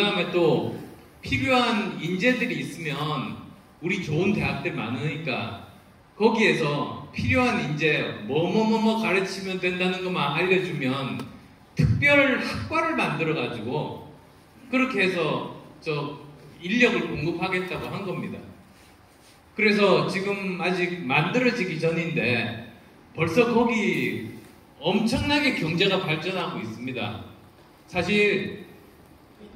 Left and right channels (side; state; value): both; identical; correlation 1.00